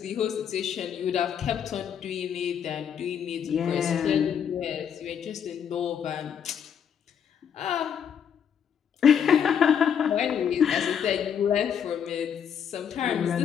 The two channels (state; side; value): quieter; right; 8.1 dB